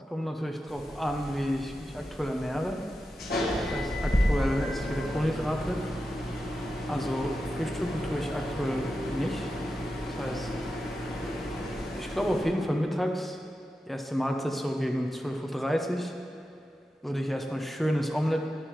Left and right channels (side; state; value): both; normal; correlation 0.90